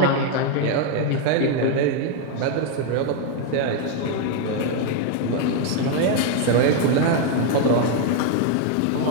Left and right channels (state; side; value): different; both; correlation 0.00